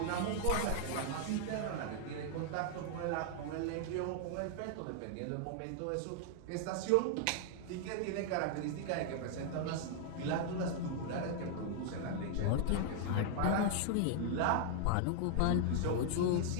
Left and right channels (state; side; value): different; both; correlation 0.00